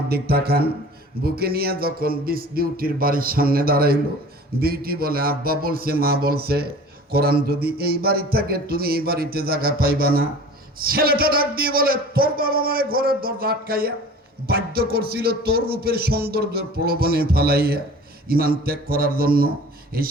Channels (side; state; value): both; normal; correlation 0.43